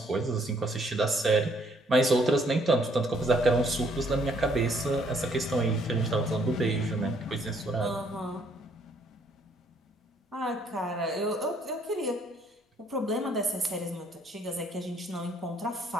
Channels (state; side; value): normal; both; correlation 0.66